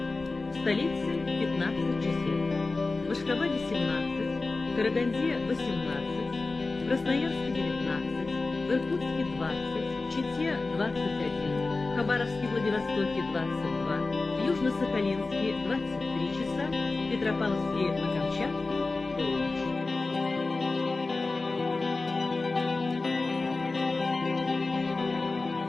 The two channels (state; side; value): quieter; right; 3.6 dB